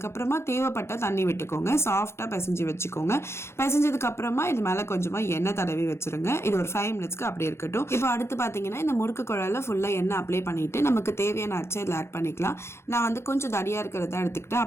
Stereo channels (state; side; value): late; right; 0.13 ms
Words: தேவைப்பட்ட தண்ணி விட்டுக்கோங்க. சாஃப்டாக பிசைஞ்சு வச்சுக்கோங்க. பிசைஞ்சதுக்கு அப்புறமா இது மேலே கொஞ்சமாக எண்ணெய் தடவி வச்சிருங்க. இது ஒரு 5 மினிட்ஸ்க்கு அப்படியே இருக்கட்டும். இப்போ அடுத்து பார்த்தீங்கன்னா இந்த முறுக்கு குழாயில் ஃபுல்லாக எண்ணெய் அப்ளை பண்ணிட்டு நமக்கு தேவையான அச்சை இதில் ஆட் பண்ணிக்கலாம். நான் வந்து கொஞ்சம் தடியாக இருக்கிறத எடுத்துக்கிட்டேன்,